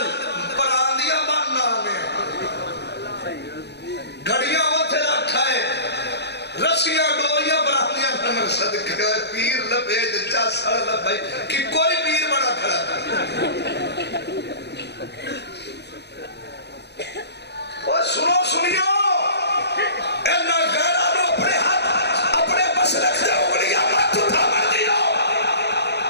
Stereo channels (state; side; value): late; right; 0.49 ms